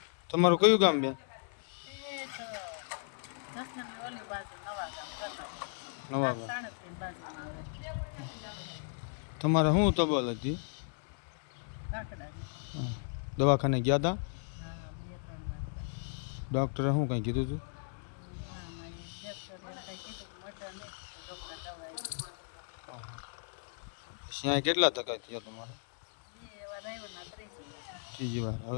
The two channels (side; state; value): right; silent; 54 dB below the other